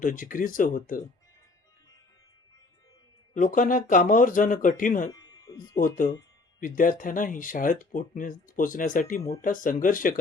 जिकिरीचं होतं. लोकांना कामावर जाणं कठीण होतं. विद्यार्थ्यांनाही शाळेत पोचण्यासाठी मोठा संघर्ष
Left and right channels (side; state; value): right; quieter; 3.4 dB